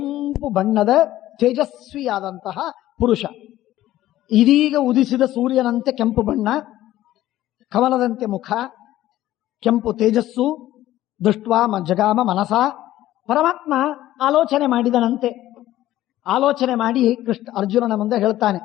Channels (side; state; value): right; quieter; 14.4 dB